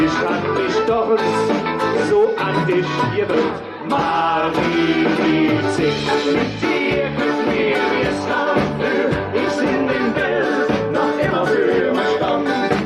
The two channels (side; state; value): both; identical; correlation 1.00